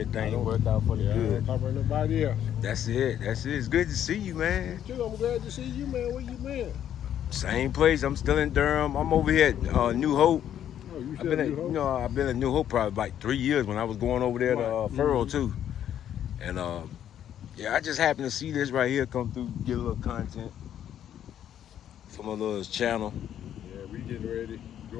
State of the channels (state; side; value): quieter; right; 10.3 dB